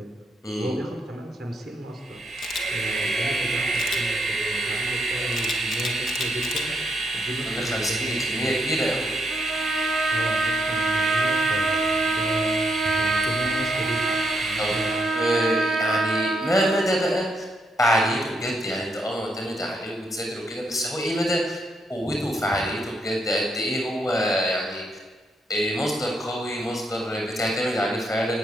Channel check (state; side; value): normal; both; correlation 0.77